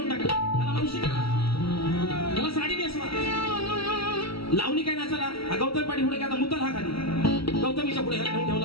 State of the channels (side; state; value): right; late; 0.76 ms